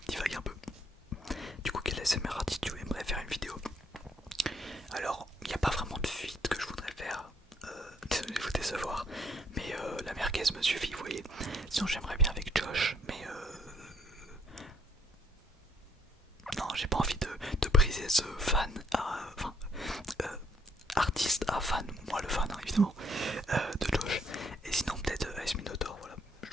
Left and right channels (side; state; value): both; normal; correlation 0.67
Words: divague un peu. Du coup, quel ASMR artiste tu aimerais faire une vidéo? Alors, il n'y a pas vraiment de feat que je voudrais faire, désolé de vous décevoir, mais la merguez me suffit, vous voyez. Sinon, j'aimerais bien avec Josh, mais non, j'ai pas envie de briser ce fan à. Enfin, artiste à fan, moi le fan, hein, évidemment, de Josh. Et sinon, peut-être Ice Minotaur, voilà, je